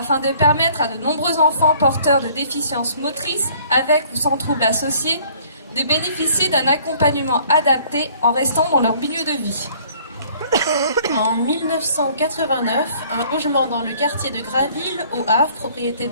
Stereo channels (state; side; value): inverted; both; correlation -0.57